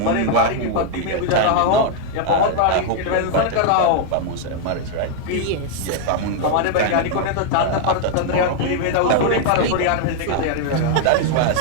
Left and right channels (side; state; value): both; different; correlation 0.00